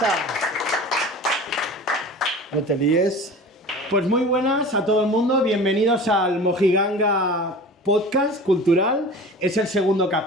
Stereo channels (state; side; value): normal; both; correlation 0.38